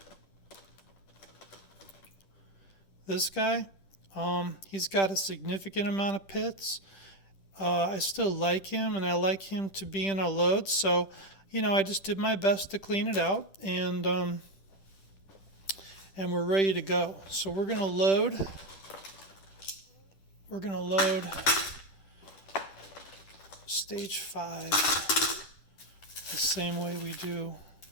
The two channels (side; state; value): right; late; 10 ms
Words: this guy, he's got a significant amount of pits. I still like him, and I like him to be in our load, so I just did my best to clean it out, and we're ready to go. So we're gonna load stage 5 the same way we do